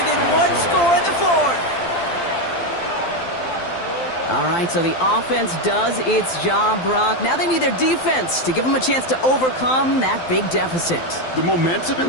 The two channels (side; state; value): right; late; 12 ms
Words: 1 score in the 4th. All right, so the offense does its job, Brock. Now they need their defense to give them a chance to overcome that big deficit. The momentum in